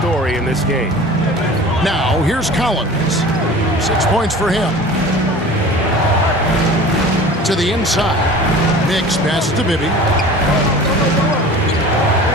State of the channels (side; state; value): both; normal; correlation 0.40